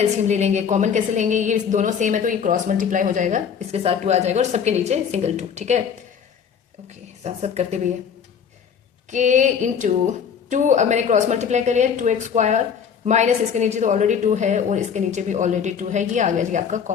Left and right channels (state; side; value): quieter; right; 7.2 dB